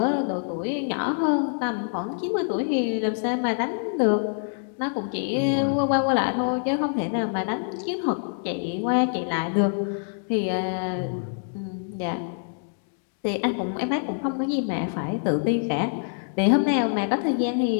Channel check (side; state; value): right; silent; digital silence